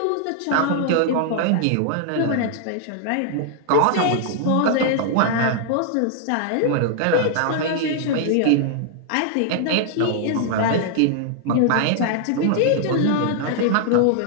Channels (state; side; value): different; both; correlation -0.01